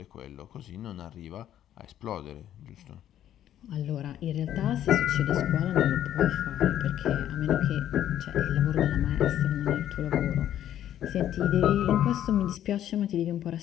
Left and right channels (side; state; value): right; quieter; 11.3 dB